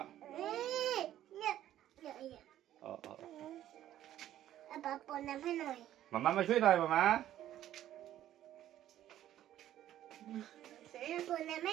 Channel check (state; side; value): quieter; left; 12.4 dB